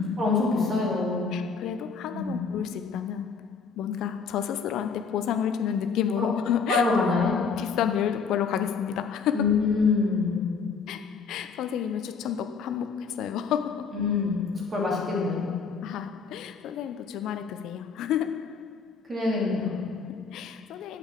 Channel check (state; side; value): quieter; right; 5.5 dB